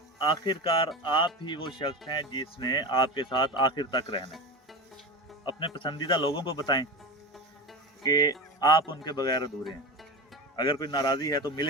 आखिरकार आप ही वो शख्स हैं जिसने आपके साथ आखिर तक रहना है। अपने पसंदीदा लोगों को बताएं कि आप उनके बगैर अधूरे हैं। अगर कोई नाराज़ी है तो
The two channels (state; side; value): normal; both; correlation 0.25